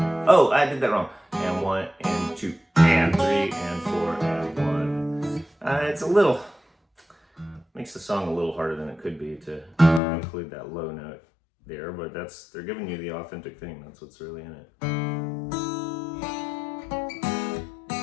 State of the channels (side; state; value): right; drops out; at 10.0 s